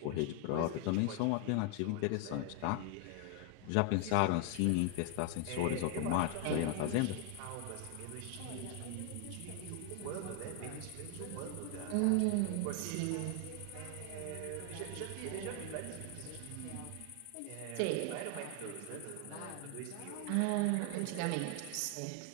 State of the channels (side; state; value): both; different; correlation 0.00